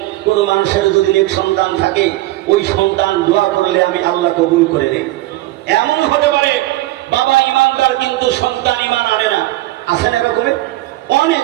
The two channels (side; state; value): left; quieter; 17.5 dB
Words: কোন মানুষের যদি নেক সন্তান থাকে ওই সন্তান দোয়া করলে আমি আল্লাহ কবুল করে নেই। এমন হতে পারে বাবা ইমানদার কিন্তু সন্তান ইমান আনে না, আছে না এরকমের? অনেক